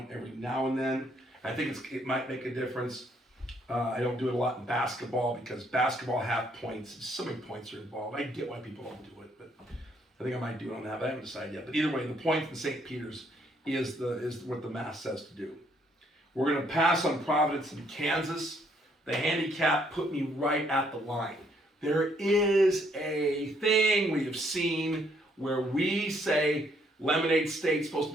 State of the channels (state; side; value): normal; both; correlation 0.69